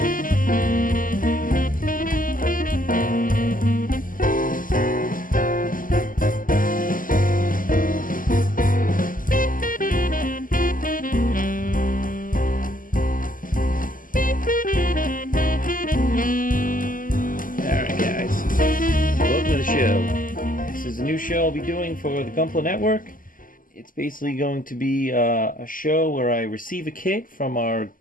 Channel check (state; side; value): late; right; 0.40 ms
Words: This is a new show I'll be doing for the Gunpla Network. It's basically going to be a show where I receive a kit from our